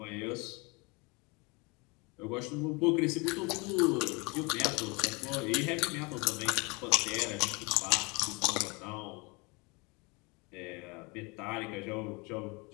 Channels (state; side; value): quieter; right; 28.4 dB